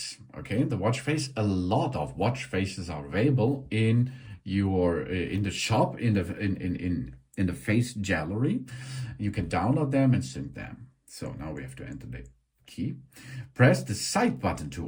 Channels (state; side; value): identical; both; correlation 1.00